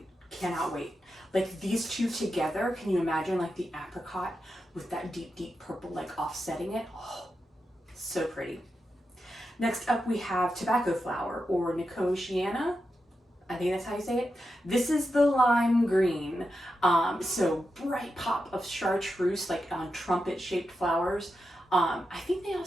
Cannot wait. Like these two together, can you imagine like the apricot with that deep purple like offsetting it? Oh, so pretty. Next up we have tobacco flower, or Echinacea. I think that's how you say it. This is the lime green. So bright pop of chartreuse, like on trumpet shaped flowers. I think they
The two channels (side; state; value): both; normal; correlation 0.88